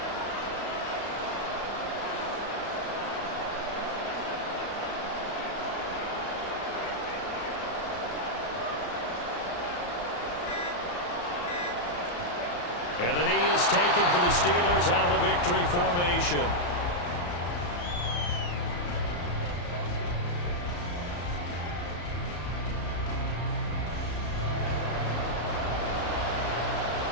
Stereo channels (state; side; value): late; right; 34 ms